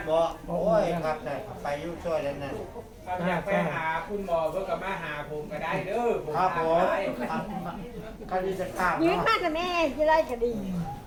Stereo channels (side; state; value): both; identical; correlation 1.00